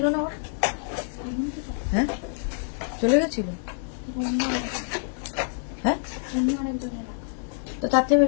না ওর, হ্যাঁ চলে গেছিল, হ্যাঁ তো তার থেকে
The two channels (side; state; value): right; silent; 59 dB below the other